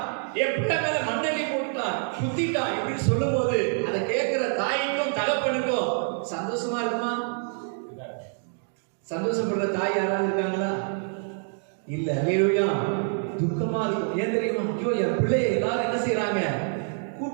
என் பிள்ளை மேல மண்ணெல்லி போட்டுட்டான், குத்திட்டான் இப்படின்னு சொல்லும் போது அதை கேட்கிற தாய்க்கும் தகப்பனுக்கும் சந்தோஷமா இருக்குமா? சந்தோஷப்படுற தாய் யாராவது இருக்காங்களா? இல்ல. அல்லேலூயா. துக்கமா இருக்கும். ஏன் தெரியுமா? ஐயோ, என் பிள்ளைய எல்லாரும் என்ன செய்யறாங்க?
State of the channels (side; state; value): left; silent; 56 dB below the other